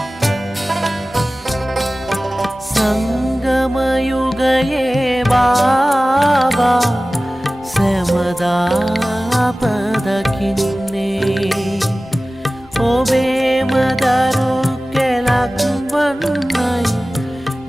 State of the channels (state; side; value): normal; both; correlation 0.97